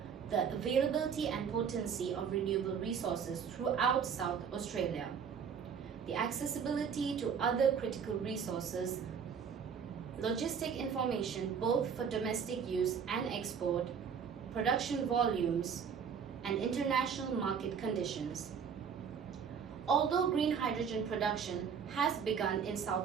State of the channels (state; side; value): quieter; left; 6.9 dB